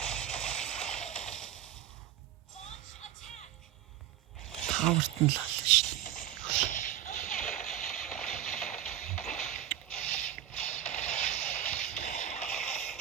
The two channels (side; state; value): left; quieter; 11.3 dB